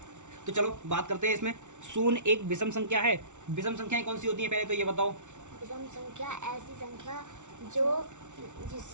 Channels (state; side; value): late; left; 0.85 ms